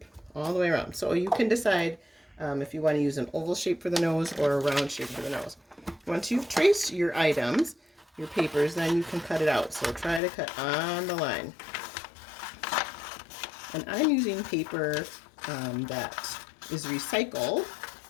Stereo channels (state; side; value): drops out; right; at 10.2 s